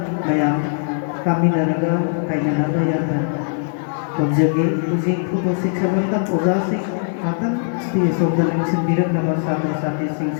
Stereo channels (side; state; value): right; silent; digital silence